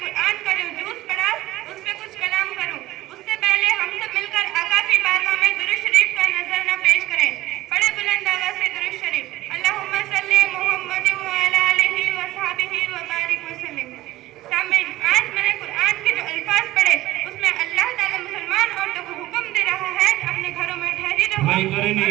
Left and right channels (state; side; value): quieter; left; 16.7 dB